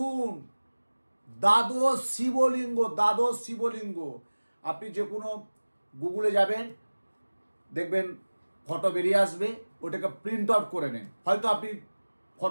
দ্বাদশ শিবলিঙ্গ আপনি যে কোনো গুগলে যাবেন দেখবেন ফটো বেরিয়ে আসবে, ওটাকে প্রিন্ট আউট করে নেন। হয়তো আপনি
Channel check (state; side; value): inverted; both; correlation -1.00